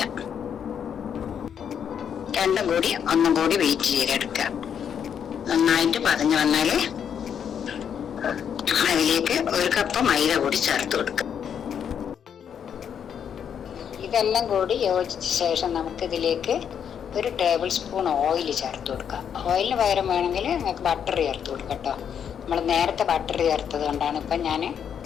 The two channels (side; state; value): right; quieter; 8.2 dB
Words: രണ്ടും കൂടി ഒന്നും കൂടി വെയിറ്റ് ചെയ്തെടുക്കുക. നന്നായിട്ട് പതിഞ്ഞു വന്നാൽ അതിലേക്ക് 1 കപ്പ് മൈദ കൂടി ചേർത്ത് കൊടുക്കുക. ഇതെല്ലാം കൂടി യോജിച്ച ശേഷം നമുക്കിതിലേക്ക് 1 ടേബിൾ സ്പൂൺ ഓയിൽ ചേർത്ത് കൊടുക്കാം. ഓയിലിന് പകരം വേണമെങ്കിൽ നിങ്ങൾക്ക് ബട്ടർ ചേർത്ത് കൊടുക്കാം കേട്ടോ. നമ്മൾ നേരത്തെ ബട്ടർ ചേർത്തത് കൊണ്ടാണ് ഇപ്പം ഞാൻ